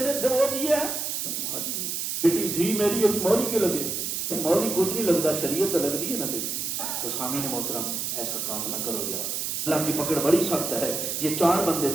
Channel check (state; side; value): noise; right; hiss, 2 dB below the sound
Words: تھے وہ دیے ہیں؟ بیٹی تھی میری ابھی مولی کے لگے، مولی کچھ نہیں لگتا، شریعت لگ دی ہے نا۔ تو سامعین محترم ایسا کام نہ کرو یار، اللہ کی پکڑ بڑی سخت ہے۔ یہ 4 بندے